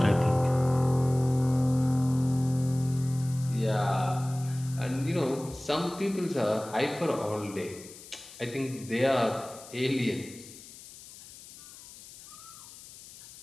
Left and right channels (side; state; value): left; noise; hiss, 18 dB below the sound